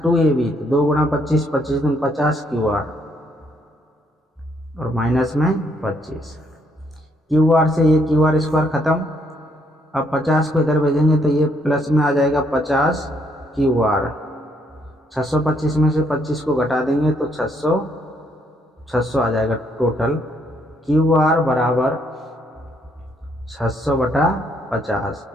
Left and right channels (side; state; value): both; normal; correlation 0.71